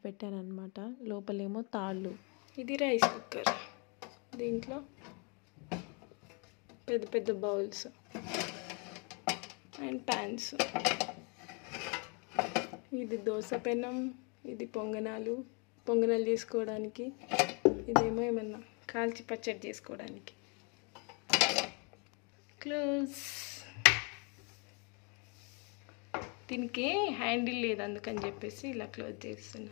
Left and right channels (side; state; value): right; quieter; 34.0 dB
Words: పెట్టాను అనమాట. లోపలేమో తాళ్ళు. ఇది రైస్ కుక్కర్. దీంట్లో పెద్ద పెద్ద బౌల్స్ అండ్ ప్యాన్స్. ఇది దోశ పెనం, ఇది పొంగనాలు చేసుకోవడానికి. ఇదేమో ఏమన్నా కాల్చి పచ్చడి చేసుకోవడానికి. క్లోజ్. దీనికి హ్యాండిల్ లేదు, అందుకని చెప్పేసి ఇలా క్లోజ్ చేస్తున్నా.